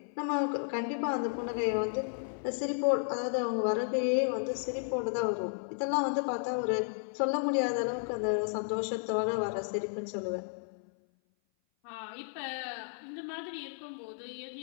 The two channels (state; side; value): silent; right; 56 dB below the other